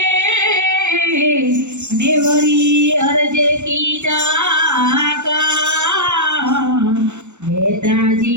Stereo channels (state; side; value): late; left; 0.83 ms